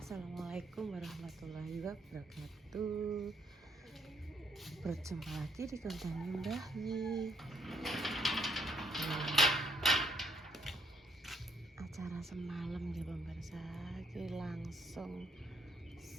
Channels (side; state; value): both; normal; correlation 0.70